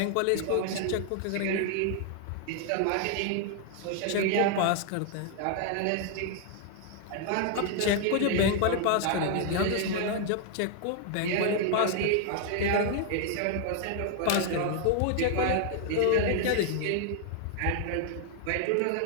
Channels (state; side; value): different; both; correlation 0.00